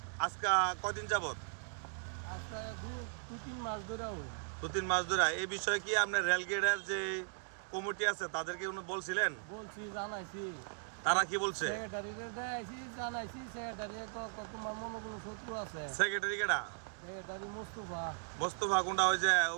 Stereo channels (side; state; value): left; silent; digital silence